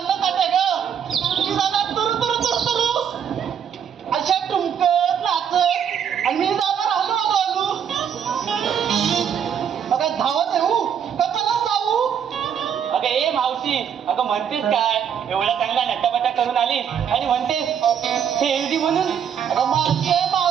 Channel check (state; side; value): quieter; left; 8.2 dB